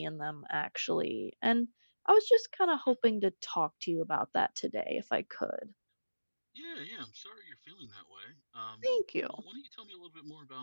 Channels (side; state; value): both; inverted; correlation -1.00